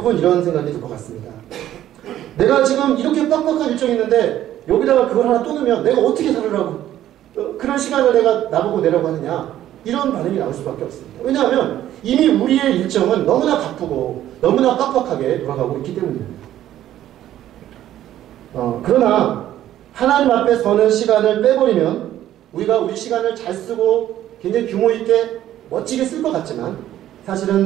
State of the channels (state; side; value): quieter; left; 12.5 dB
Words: 이런 생각이 들 것 같습니다. 내가 지금 이렇게 빡빡한 일정이 있는데 여기다가 그걸 하나 또 넣으면 내가 어떻게 살으라고 그런 시간을 내가 나보고 내라고 하느냐, 이런 반응이 나올 수밖에 없습니다. 왜냐하면 이미 우리의 일정은 너무나 바쁘고 너무나 빡빡하게 돌아가고 있기 때문입니다. 그러나 하나님 앞에 서는 시간을 빼버리면 우리가 우리 시간을 잘 쓰고 굉장히 규모 있게 멋지게 쓸 것 같지만